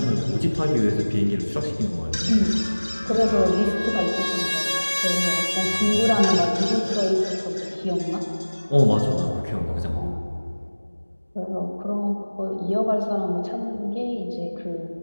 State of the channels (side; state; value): both; inverted; correlation -1.00